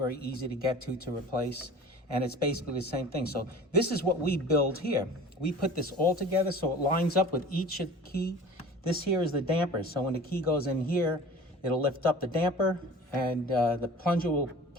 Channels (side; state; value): both; normal; correlation 0.41